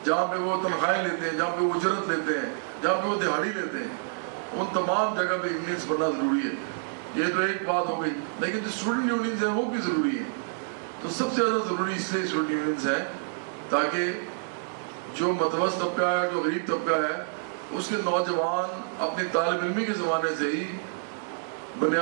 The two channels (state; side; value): silent; left; 59 dB below the other